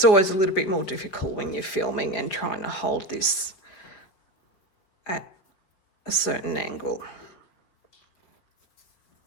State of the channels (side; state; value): right; late; 4.9 ms